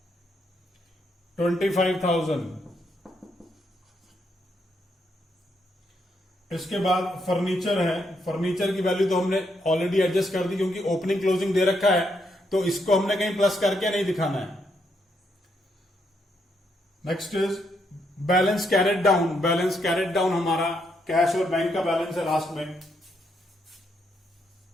25,000। इसके बाद फर्नीचर है। फर्नीचर की वैल्यू तो हमने ऑलरेडी एडजस्ट कर दी, क्योंकि ओपनिंग क्लोजिंग दे रखा है, तो इसको हमने कहीं प्लस करके नहीं दिखाना है। Next is balance carried down. Balance carried down हमारा कैश और बैंक का बैलेंस है लास्ट में।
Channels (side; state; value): both; normal; correlation 0.77